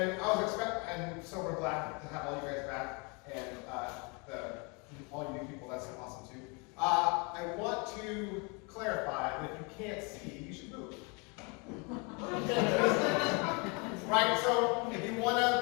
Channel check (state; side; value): quieter; right; 31.7 dB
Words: so we're glad to have all you guys back, and all you new people, that's awesome too. I want to clarify that if you can't see, you should move. Right, so if you want